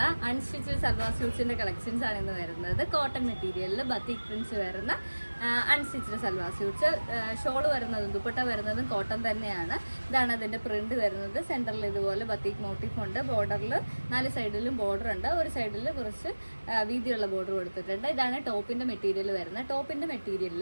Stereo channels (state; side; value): inverted; both; correlation -1.00